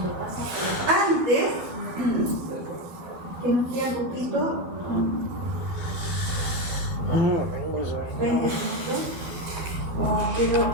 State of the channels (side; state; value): left; late; 12 ms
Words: Antes, que nos queda un poquito, 20 minutos, no quiero